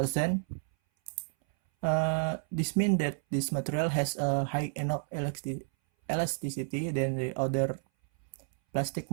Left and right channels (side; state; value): left; silent; 57 dB below the other